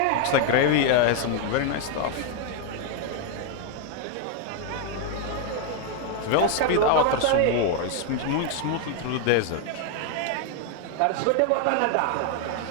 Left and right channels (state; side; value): different; both; correlation 0.01